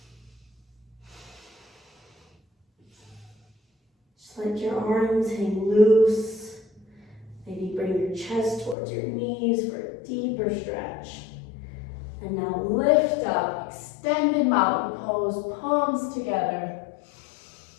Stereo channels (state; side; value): drops out; right; at 8.8 s